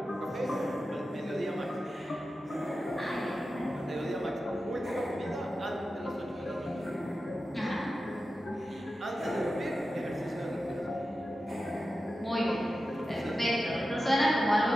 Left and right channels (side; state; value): both; normal; correlation 0.92